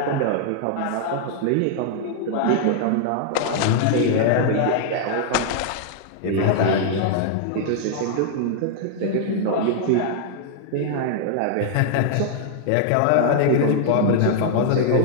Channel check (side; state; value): both; different; correlation -0.01